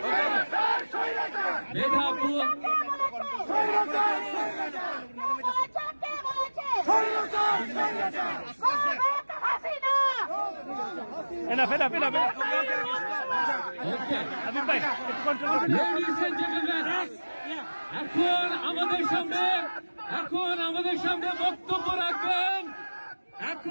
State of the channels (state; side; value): inverted; both; correlation -1.00